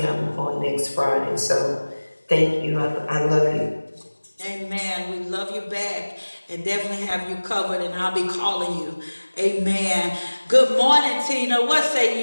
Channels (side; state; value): both; inverted; correlation -1.00